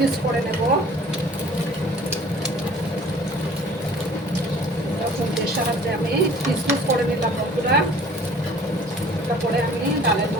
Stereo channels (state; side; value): normal; both; correlation 0.50